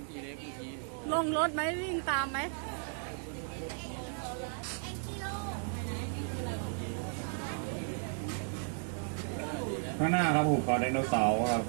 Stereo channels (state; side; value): silent; left; 55 dB below the other